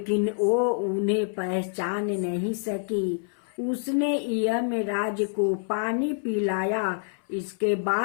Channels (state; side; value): silent; right; 60 dB below the other